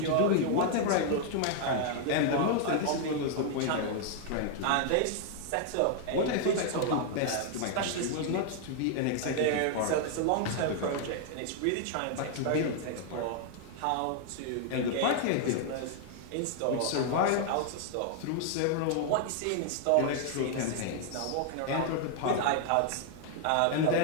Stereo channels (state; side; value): different; both; correlation 0.00